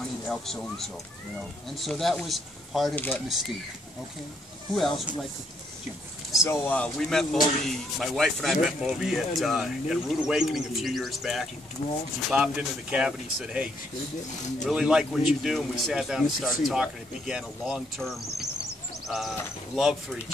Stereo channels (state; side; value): normal; both; correlation 0.72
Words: to help so-and-so, you know." And so that was part of that mystique. Okay. Who else would like to? Jim. So we met Moby, my wife and I met Moby at Rude Awakening a few years back. He popped into the cabin, he said, "Hey, really like what you do," and we sat down and started talking. It began a long-term love for